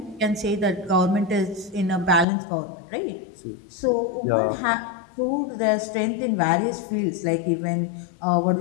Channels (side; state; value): right; drops out; at 2.2 s